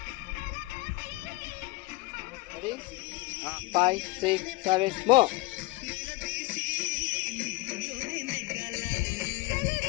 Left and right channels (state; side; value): quieter; right; 21.4 dB